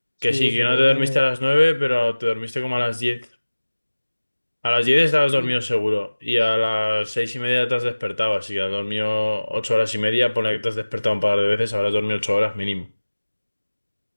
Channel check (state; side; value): inverted; both; correlation -1.00